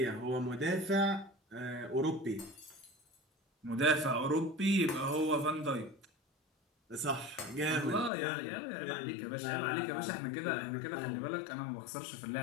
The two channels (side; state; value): right; drops out; at 8.1 s